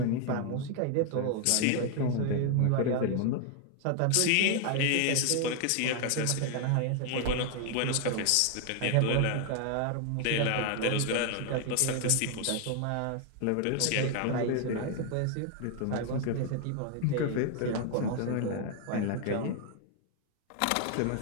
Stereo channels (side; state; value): both; different; correlation 0.00